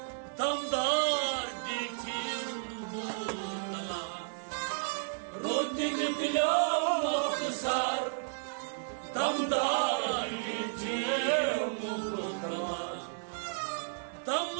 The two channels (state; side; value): silent; left; digital silence